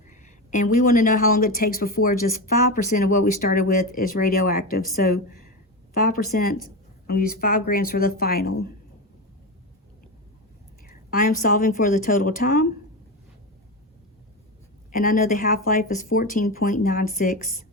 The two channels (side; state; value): both; normal; correlation 0.18